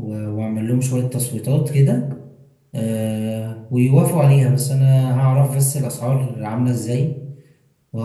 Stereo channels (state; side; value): identical; both; correlation 1.00